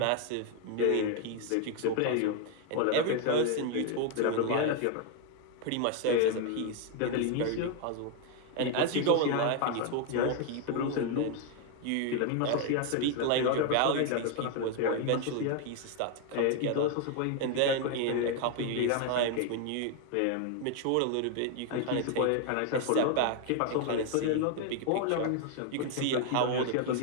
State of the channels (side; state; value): both; different; correlation 0.01